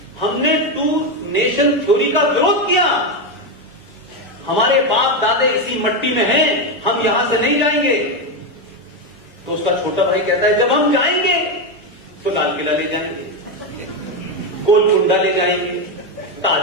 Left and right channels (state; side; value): normal; both; correlation 0.09